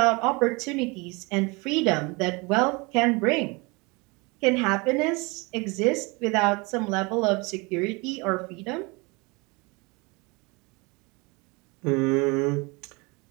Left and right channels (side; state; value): left; quieter; 27.2 dB